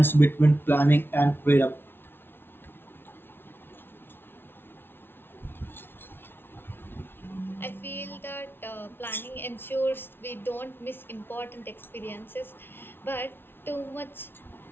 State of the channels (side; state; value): right; late; 0.11 ms